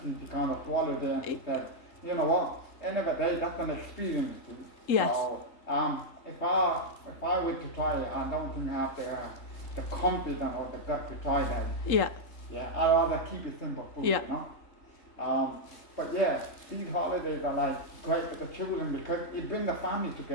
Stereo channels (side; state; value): right; late; 3.8 ms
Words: she kind of swallowed it, and she said, you know what? End of the day, that's an experience too. Yes. So if I were to try it, I don't think I have the confidence or the gut to try that. Yeah. Yeah. I'd rather keep it simple food. Yeah. You know. But yeah, these holidays are like great for the children because it brings the family